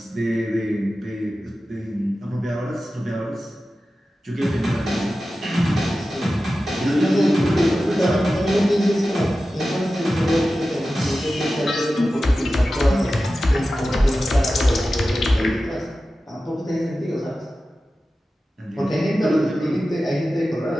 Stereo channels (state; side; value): normal; both; correlation 0.94